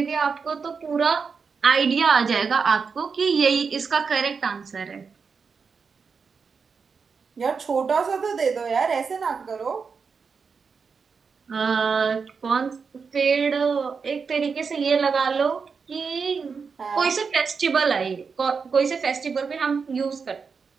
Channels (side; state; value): left; quieter; 5.4 dB